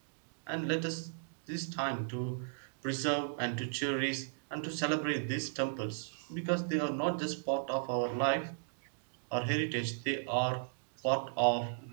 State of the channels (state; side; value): silent; left; digital silence